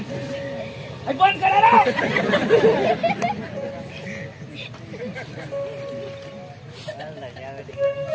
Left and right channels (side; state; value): both; identical; correlation 1.00